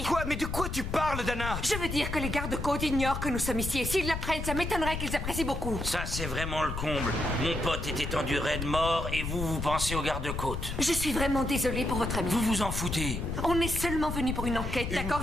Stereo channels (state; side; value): noise; left; rumble, 4 dB below the sound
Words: Quoi? Mais de quoi tu parles, Dana? Je veux dire que les gardes-côtes ignorent que nous sommes ici. Et s'ils l'apprennent, ça m'étonnerait qu'ils apprécient beaucoup. Ça, c'est vraiment le comble. Mon pote est étendu raide mort et vous pensez aux gardes-côtes. Je suis vraiment désolée pour votre ami. Vous vous en foutez. On est seulement venu pour une enquête, Une d'accord?